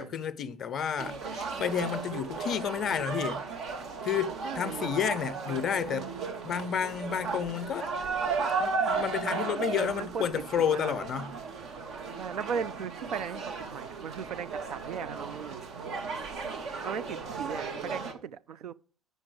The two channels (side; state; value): both; normal; correlation 0.48